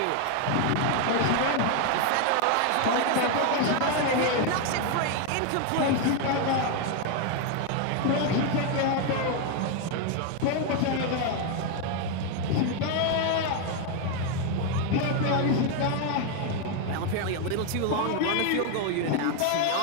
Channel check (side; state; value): both; different; correlation 0.01